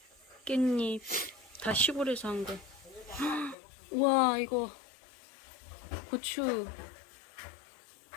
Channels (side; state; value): right; drops out; at 3.6 s